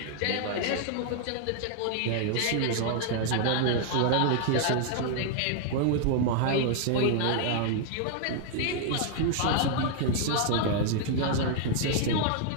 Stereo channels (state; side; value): different; both; correlation -0.01